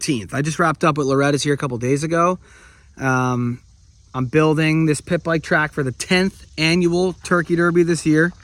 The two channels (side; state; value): both; identical; correlation 1.00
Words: I just wrapped up with Loretta's here a couple days ago. I'm building this pit bike track for the 10th annual Turkey Derby this year